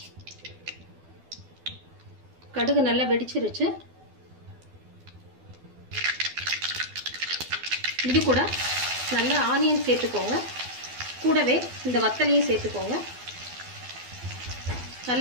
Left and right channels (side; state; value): left; late; 12 ms